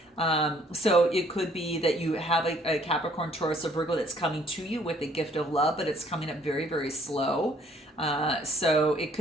So it could be that you have a Capricorn, Taurus, or Virgo that's coming to you with a gift of love, but it's coming up very, very slow. So it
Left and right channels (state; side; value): normal; both; correlation 0.61